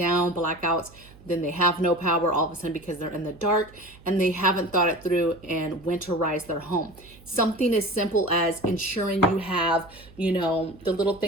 blackouts, then they have no power all of a sudden because they're in the dark and they haven't thought it through and winterized their home. Something as simple as ensuring you have, the little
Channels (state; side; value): noise; right; hum, 23 dB below the sound